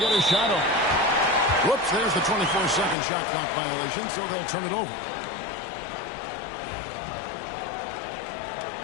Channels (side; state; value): right; drops out; at 3.0 s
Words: a shot off. Whoops, there's the 24-second shot clock violation, so they'll turn it over.